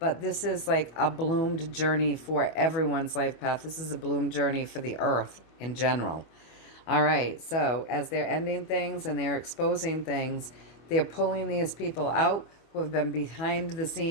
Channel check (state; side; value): late; right; 25 ms